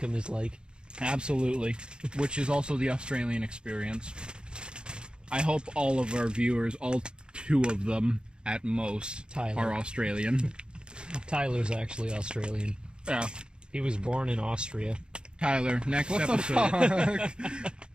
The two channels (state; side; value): late; left; 0.051 ms